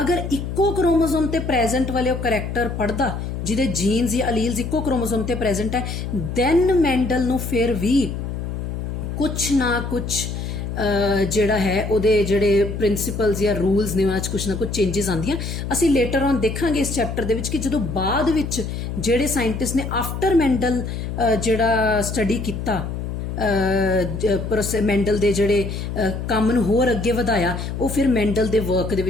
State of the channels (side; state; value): left; noise; hum, 5 dB below the sound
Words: ਅਗਰ ਇੱਕੋ ਕ੍ਰੋਮੋਸੋਮ ਤੇ ਪ੍ਰੈਜ਼ੈਂਟ ਵਾਲੇ ਉਹ ਕਰੈਕਟਰ ਪੜ੍ਹਦਾ ਜਿਹਦੇ ਜੀਨਸ ਜਾਂ ਅਲੀਲਸ ਇੱਕੋ ਕ੍ਰੋਮੋਸੋਮ ਤੇ ਪ੍ਰੈਜ਼ੈਂਟ ਹੈ, ਦੈਨ ਮੈਂਡਲ ਨੂੰ ਫਿਰ ਵੀ ਕੁਛ ਨਾ ਕੁਛ ਜਿਹੜਾ ਹੈ ਉਹਦੇ ਜਿਹੜੇ ਪ੍ਰਿੰਸੀਪਲਸ ਜਾਂ ਰੂਲਸ ਨੇ ਉਹਨਾਂ 'ਚ ਕੁਛ ਨਾ ਕੁਛ ਚੇਂਜਸ ਆਉਂਦੀਆਂ। ਅਸੀਂ ਲੇਟਰ ਔਨ ਦੇਖਾਂਗੇ ਇਸ ਚੈਪਟਰ ਦੇ ਵਿੱਚ ਕਿ ਜਦੋਂ ਬਾਅਦ ਵਿੱਚ ਜਿਹੜੇ ਸਾਇੰਟਿਸਟ ਨੇ ਆਫਟਰ ਮੈਂਡਲ ਜਿਹੜਾ ਸਟੱਡੀ ਕੀਤਾ, ਮੈਂਡਲ ਦੇ ਜਿਹੜੇ ਕੰਮ ਨੂੰ ਹੋਰ ਅੱਗੇ ਵਧਾਇਆ, ਉਹ ਫਿਰ ਮੈਂਡਲ ਦੇ ਵਰਕ ਦੇ